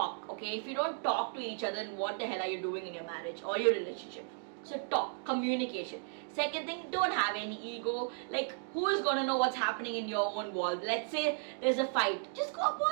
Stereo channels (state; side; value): silent; left; 55 dB below the other